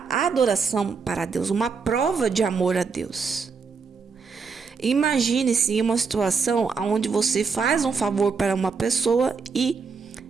adoração para Deus. Uma prova de amor a Deus. Imagine-se em uma situação onde você faz um favor para uma pessoa e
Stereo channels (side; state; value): left; quieter; 5.1 dB